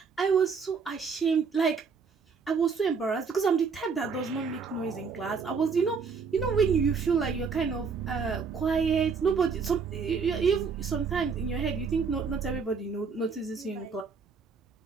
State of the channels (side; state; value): left; quieter; 5.4 dB